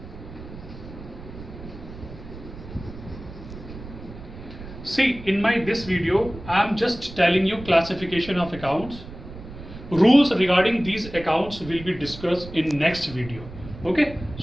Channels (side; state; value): right; noise; rumble, 14 dB below the sound